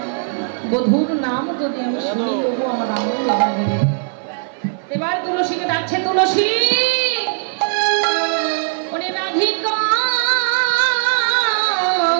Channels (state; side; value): silent; left; 58 dB below the other